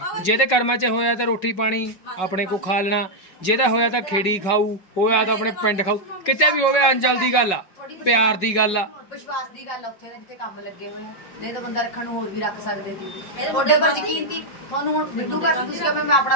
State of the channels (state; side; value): late; right; 5.4 ms